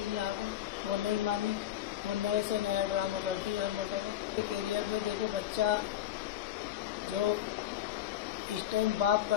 जहाँ को, वो नहीं मानी, वो नए से नया ड्रामा करती है हर मरतबा। कैरियर पे देखो, बच्चा जो इस टाइम बाप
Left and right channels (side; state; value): right; quieter; 11.7 dB